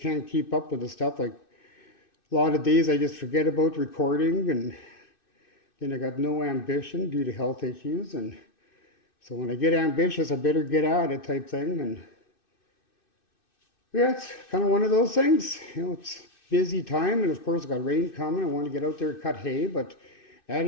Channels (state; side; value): late; right; 2.6 ms